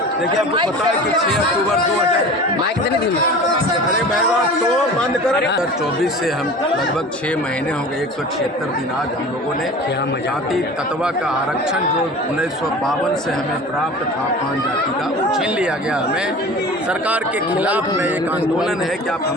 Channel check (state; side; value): normal; both; correlation 0.38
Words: देखिए, आपको पता है कि 6 अक्टूबर 2024 माइक देने दी अरे तो बंद कर 2024 से हम लगभग 6 महीने हो गए, 176 दिन आज हम लोगों ने जाति तत्वा का आरक्षण जो 1952 से हमें प्राप्त था 5 जाति का, वो छीन लिया गया हमें। सरकार के खिलाफ में एक आंदोलन है कि आप